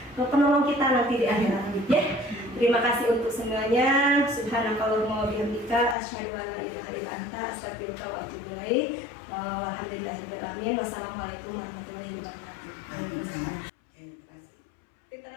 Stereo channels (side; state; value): right; drops out; at 6.0 s